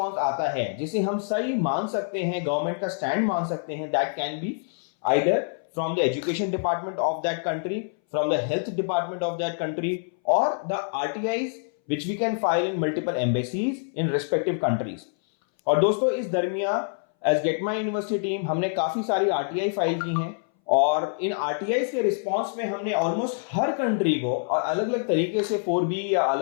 आता है, जिसे हम सही मान सकते हैं, गवर्नमेंट का स्टैंड मान सकते हैं, that can be either from the education department of that country, from the health department of that country, और the RTIs which we can file in multiple embassies in respective countries। और दोस्तों, इस दरमियान as Get My University team हमने काफी सारी RTI file की हैं और इन RTIs के रिस्पांस में हमने ऑलमोस्ट हर कंट्री को और अलग अलग तरीके से 4B या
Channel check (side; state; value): right; silent; 60 dB below the other